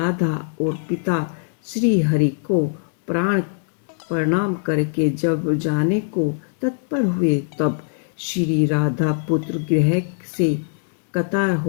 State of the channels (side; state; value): right; silent; digital silence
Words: और पिता श्री हरि को प्रणाम करके जब जाने को तत्पर हुए, तब श्री राधा पुत्र गृह से कतार